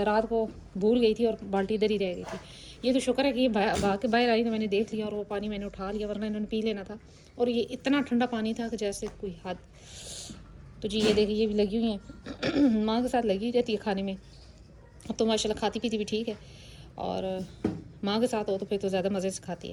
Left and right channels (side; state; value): both; identical; correlation 1.00